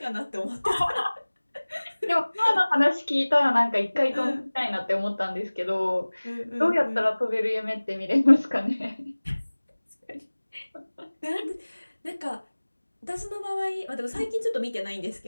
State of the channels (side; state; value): both; inverted; correlation -1.00